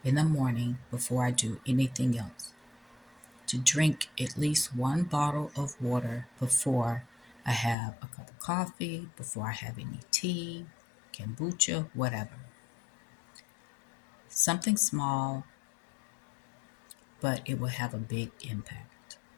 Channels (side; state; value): right; drops out; at 7.8 s